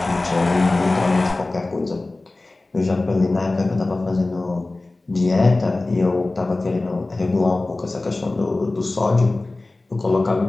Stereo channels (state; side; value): quieter; right; 3.1 dB